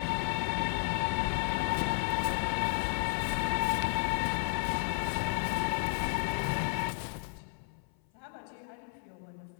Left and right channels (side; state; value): right; silent; 56 dB below the other